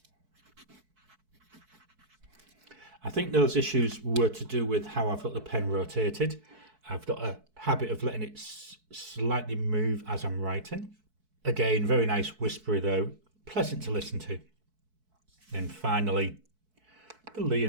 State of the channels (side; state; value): left; late; 4.6 ms